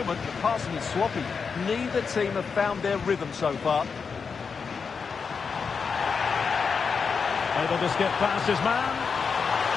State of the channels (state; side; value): quieter; right; 5.6 dB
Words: the passing is sloppy. Neither team have found their rhythm so far. Able to skip past his man.